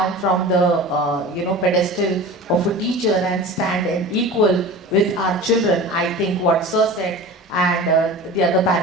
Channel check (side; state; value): both; normal; correlation 0.35